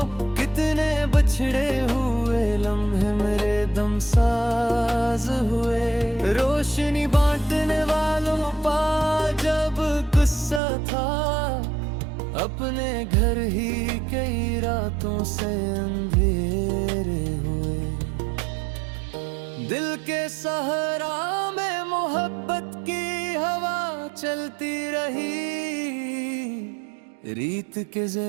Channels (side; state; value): left; drops out; at 10.6 s